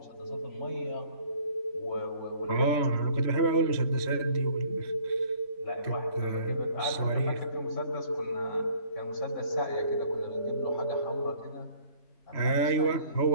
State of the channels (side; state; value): right; late; 3.1 ms